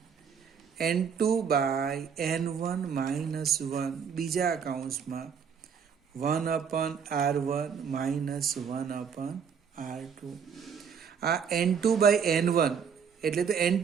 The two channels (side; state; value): left; quieter; 6.8 dB